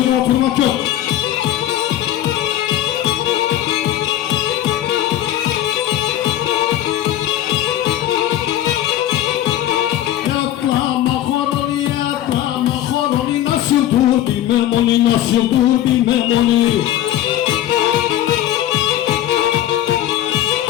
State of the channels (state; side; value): quieter; right; 12.7 dB